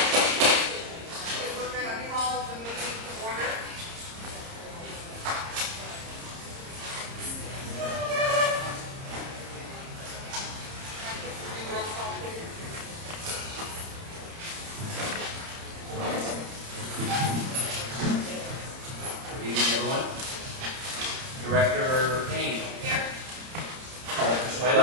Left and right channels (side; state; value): left; late; 30 ms